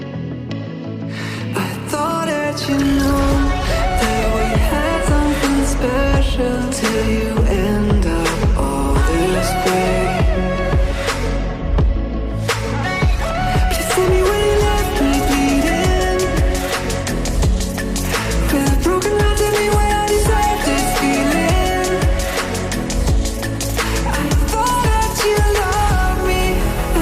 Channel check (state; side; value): identical; both; correlation 1.00